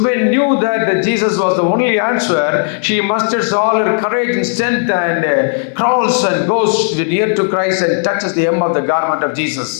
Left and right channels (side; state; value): right; silent; 68 dB below the other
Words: knew that Jesus was the only answer, she musters all her courage and strength and crawls and goes near to Christ and touches the hem of the garment of Jesus.